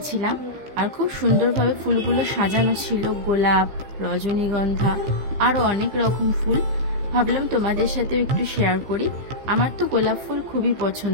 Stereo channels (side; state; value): left; late; 15 ms